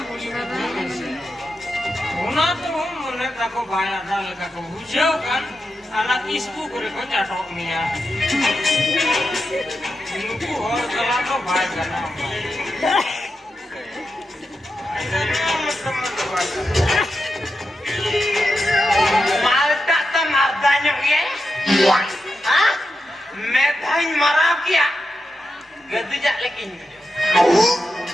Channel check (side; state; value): both; normal; correlation 0.88